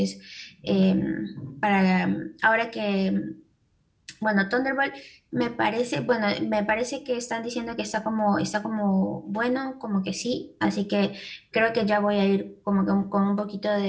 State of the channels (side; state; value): both; identical; correlation 1.00